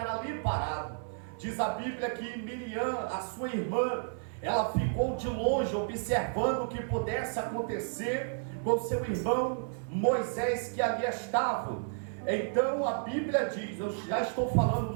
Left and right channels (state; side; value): silent; left; 57 dB below the other